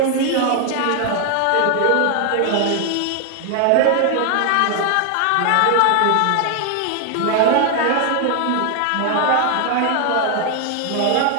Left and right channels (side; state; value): both; different; correlation 0.00